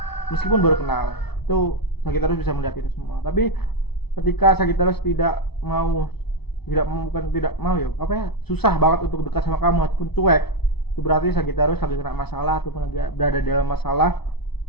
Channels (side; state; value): right; late; 0.98 ms